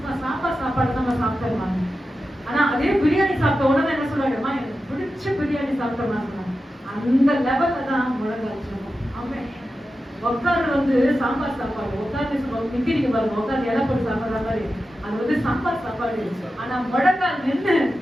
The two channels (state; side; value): normal; both; correlation 0.92